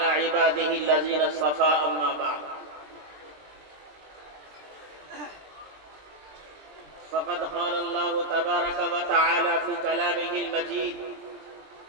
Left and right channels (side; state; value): left; late; 20 ms